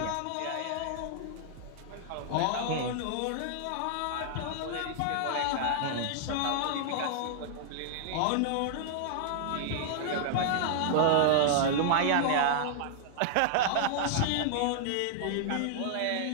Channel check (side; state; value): both; different; correlation -0.01